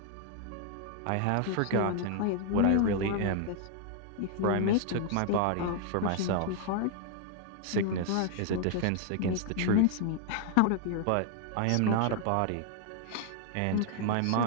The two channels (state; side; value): different; both; correlation 0.00